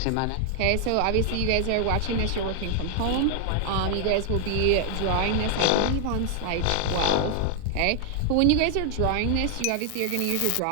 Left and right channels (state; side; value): different; both; correlation 0.00